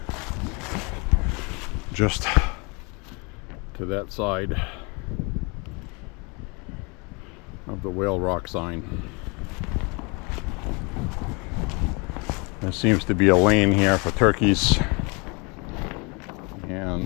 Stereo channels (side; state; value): right; quieter; 30.4 dB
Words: just to that side of the Whale Rock sign. There seems to be a lane here for turkeys.